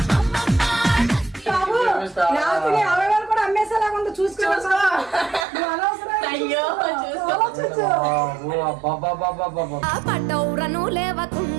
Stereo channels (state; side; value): drops out; left; at 5.5 s